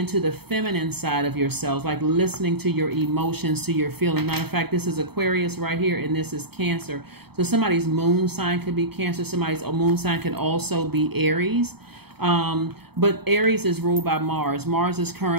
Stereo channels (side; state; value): left; late; 0.97 ms